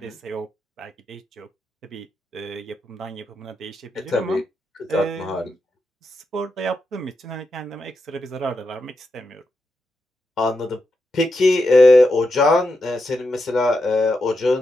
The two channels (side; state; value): both; normal; correlation 0.86